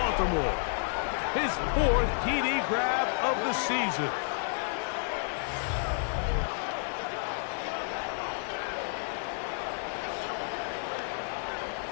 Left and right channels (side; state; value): right; silent; digital silence